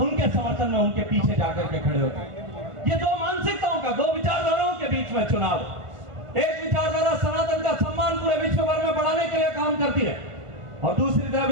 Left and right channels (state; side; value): late; left; 1.5 ms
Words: उनके समर्थन में उनके पीछे जाकर के खड़े होते हैं। ये 2 मानसिकताओं का, 2 विचारधाराओं के बीच में चुनाव। एक विचारधारा सनातन का सम्मान पूरे विश्व भर में बढ़ाने के लिए काम करती है, और दूसरी तरफ